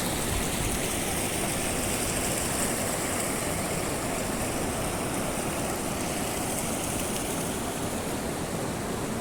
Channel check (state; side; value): identical; both; correlation 1.00